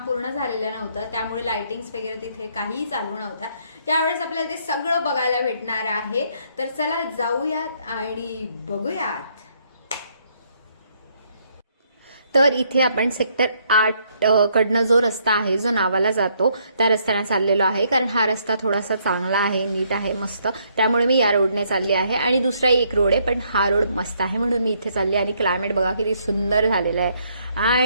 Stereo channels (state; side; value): inverted; both; correlation -0.70